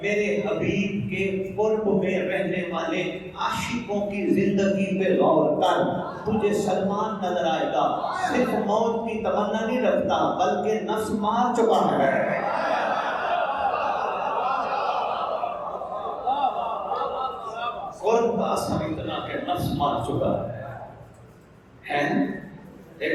میرے حبیب کے قرب میں رہنے والے عاشقوں کی زندگی پہ غور کر. تجھے سلمان نظر آئے گا، صرف موت کی تمنا نہیں رکھتا بلکہ نفس مار چکا ہے. قرب کا اثر اتنا کہ نفس مار چکا ہے.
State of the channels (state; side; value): identical; both; correlation 1.00